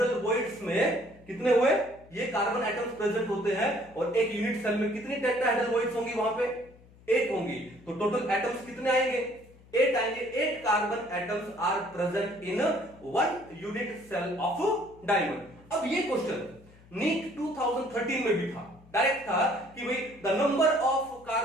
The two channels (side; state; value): left; noise; hum, 25 dB below the sound